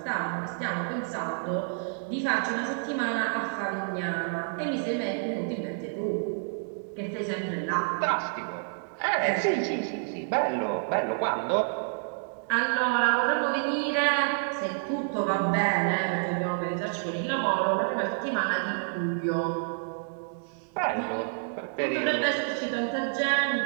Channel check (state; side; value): silent; left; digital silence